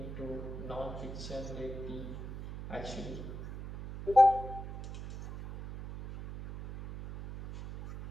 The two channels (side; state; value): right; noise; hum, 9 dB below the sound